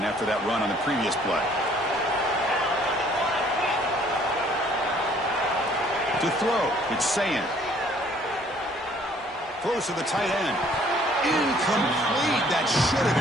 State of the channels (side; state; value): both; normal; correlation 0.59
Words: after that run on the previous play. To throw, it's Sayin. Throws to the tight end. Incomplete. That should have